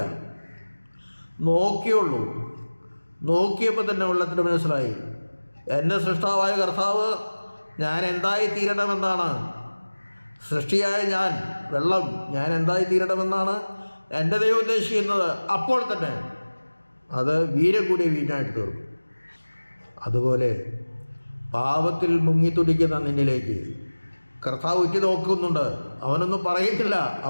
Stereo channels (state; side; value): inverted; both; correlation -1.00